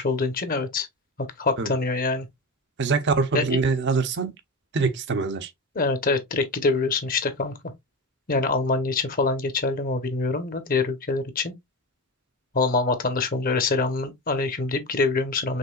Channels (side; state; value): both; normal; correlation 0.22